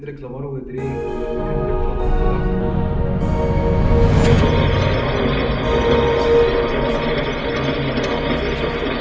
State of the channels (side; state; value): both; identical; correlation 1.00